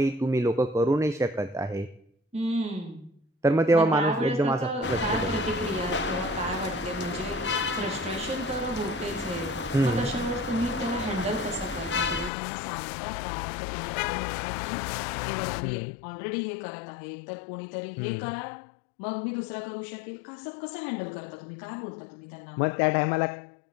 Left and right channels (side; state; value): right; drops out; at 12.3 s